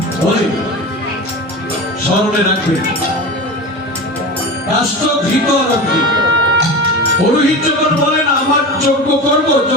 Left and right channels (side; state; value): both; normal; correlation 0.29